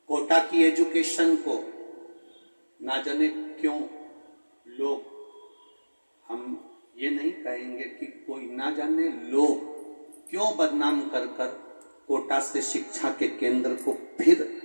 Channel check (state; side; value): inverted; both; correlation -1.00